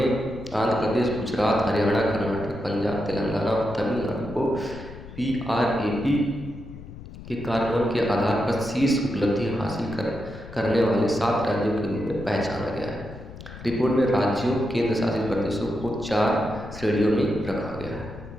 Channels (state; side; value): noise; left; rumble, 14 dB below the sound